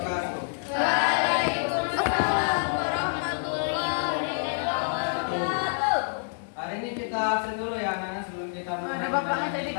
Waalaikumsalam warahmatullahi wabarakatuh. Hari ini kita absen dulu ya anak-anak sebelum kita mulai. Ada bapaknya tadi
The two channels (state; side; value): silent; right; 60 dB below the other